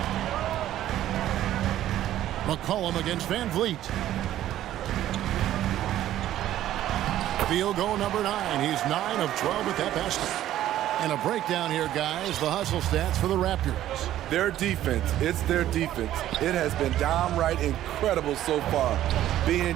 McCollum against Van Vliet. Field goal number 9. He's 9 of 12 at that basket. And a breakdown here, guys. The hustle stats for the Raptors. Their defense. It's their defense. It has been downright incredible so far.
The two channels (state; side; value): quieter; left; 12.9 dB